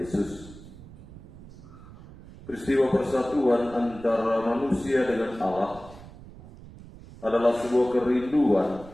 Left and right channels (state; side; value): noise; right; rumble, 18 dB below the sound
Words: Peristiwa persatuan antara manusia dengan Allah adalah sebuah kerinduan